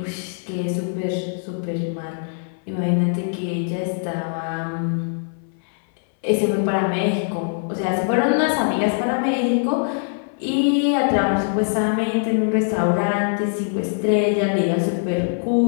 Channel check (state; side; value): silent; right; 64 dB below the other